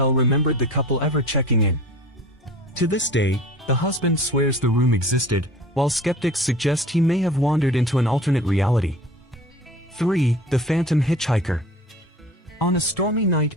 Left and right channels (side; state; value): both; normal; correlation 0.41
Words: remembered the couple ever checking in. To this day, the husband swears the room existed, while skeptics suggest he may have wandered into an alternate reality. 3. The Phantom Hitchhiker. On a stormy night